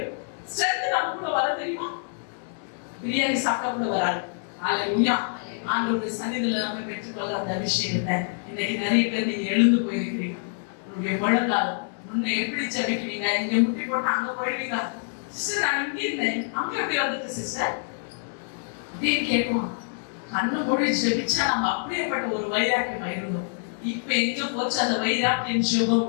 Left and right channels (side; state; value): right; silent; digital silence